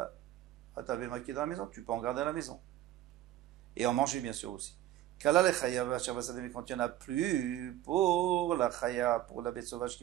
béma qui est dans la maison, tu peux en garder à la maison. Et en manger bien sûr aussi. Kala le chaya mais quand il n'y en a plus, pour la chaya, pour la bête sauvage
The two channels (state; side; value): quieter; left; 13.3 dB